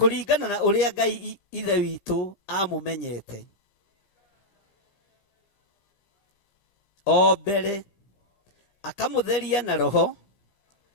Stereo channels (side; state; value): right; late; 15 ms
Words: na ũrĩa Ngai Ithe witũ amũmenyete o mbere, akamũtheria na roho,